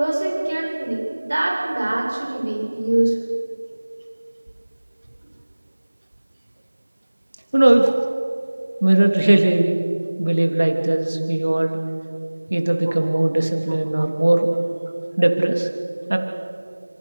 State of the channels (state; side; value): inverted; both; correlation -1.00